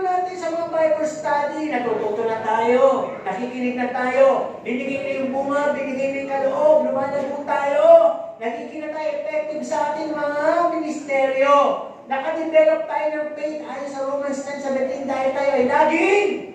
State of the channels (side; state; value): both; identical; correlation 1.00